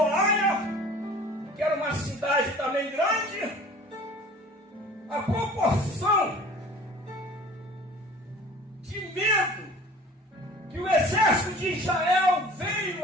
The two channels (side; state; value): both; normal; correlation 0.45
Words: Aia, que era uma cidade também grande, a proporção de medo que o exército de Israel